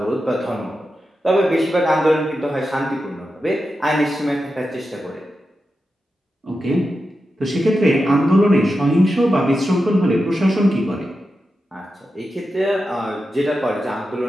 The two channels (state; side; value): normal; both; correlation 0.90